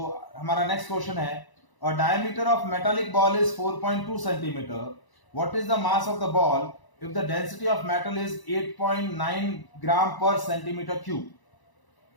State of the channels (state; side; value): late; right; 1.0 ms